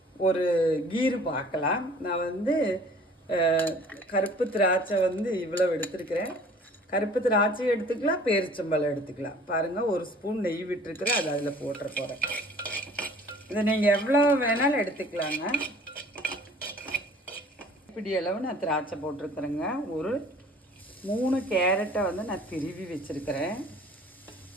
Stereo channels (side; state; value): both; normal; correlation 0.50